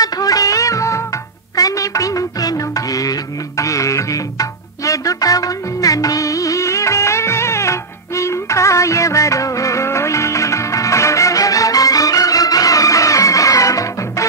కనిపించెను ఏది ఏది ఎదుట ఉన్న నీవేలే ఇంకా ఎవరోయి.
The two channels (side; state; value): left; quieter; 3.9 dB